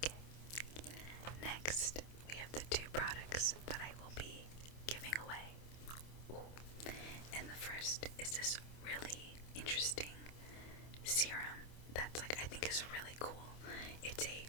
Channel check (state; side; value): late; right; 27 ms